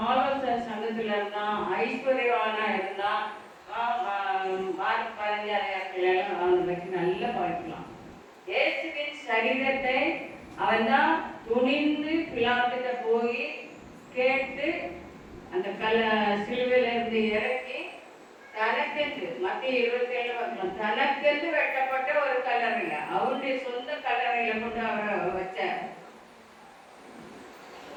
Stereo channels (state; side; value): identical; both; correlation 1.00